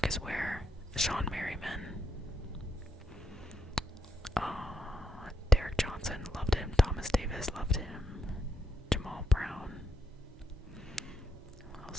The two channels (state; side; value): normal; both; correlation 0.77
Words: Ware, Sean Merriman. Derek Johnson, loved him. Thomas Davis, loved him. Jamal Brown. What